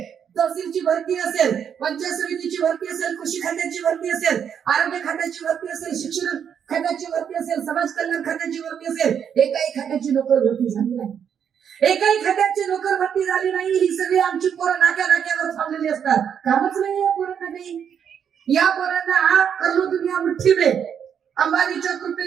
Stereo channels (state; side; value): quieter; left; 8.0 dB